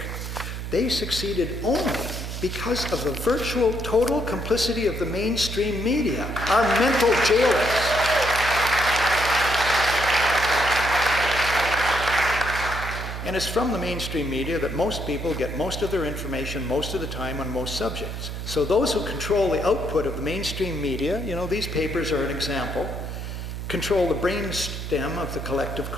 They succeeded only because of the virtual total complicity of the mainstream media, our mental jailers. And it's from the mainstream media that most people get most of their information most of the time on most subjects. So those who control the output of the mainstream media, you know, these papers are an example, control the brainstem of the collective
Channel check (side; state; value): right; noise; hum, 6 dB below the sound